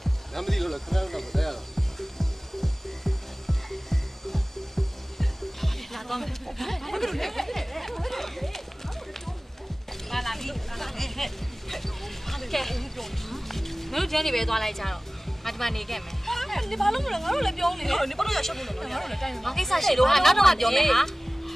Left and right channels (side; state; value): both; normal; correlation 0.98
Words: လမ်းမသိလို့လားခင်ဗျားတို့တော့မတဲရတော့ လာတော့မယ်လာလာပြီကဲမင်းတို့ကျန်းနေပဲသွားလိုက်ကြတော့ငါဒီမှာနေခဲ့မယ် 你ဘာလို့မလဲငါတို့လည်းပြောနေတယ်你ဘာလို့ရရှက်ဖို့လဲငါတို့လည်းတိုင်း ငါကိစ္စရှိလို့ဟာနောက်တော့မှပြောမယ်ဟာ